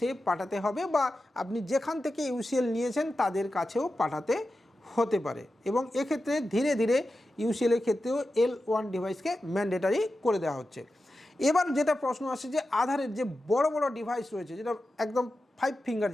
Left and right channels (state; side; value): normal; both; correlation 0.92